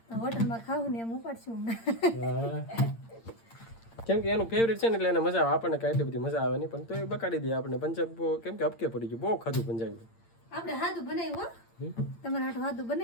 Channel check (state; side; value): late; right; 8.8 ms